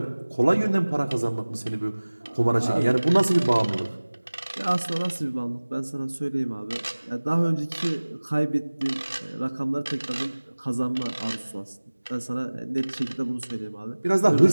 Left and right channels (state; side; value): inverted; both; correlation -1.00